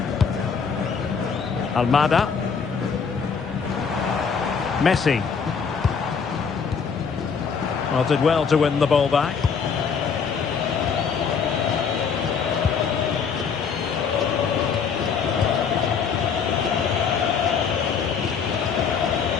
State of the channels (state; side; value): quieter; right; 6.2 dB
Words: Almada. Messi. Well, did well to win the ball back.